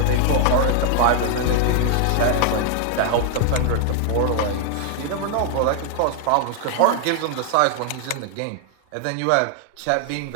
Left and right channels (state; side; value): different; both; correlation 0.00